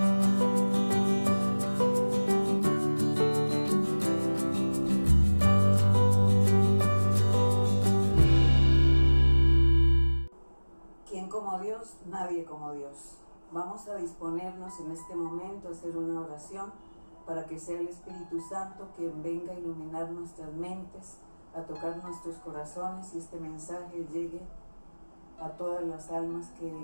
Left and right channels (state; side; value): inverted; both; correlation -1.00